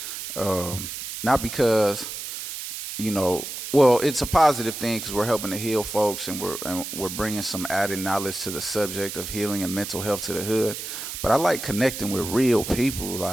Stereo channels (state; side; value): noise; right; hiss, 7 dB below the sound